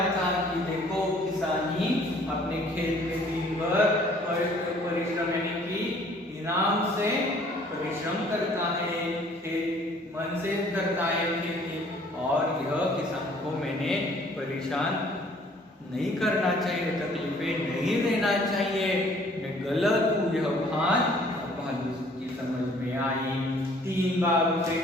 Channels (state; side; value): normal; both; correlation 0.57